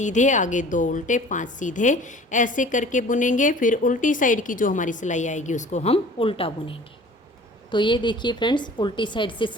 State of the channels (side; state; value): both; normal; correlation 0.46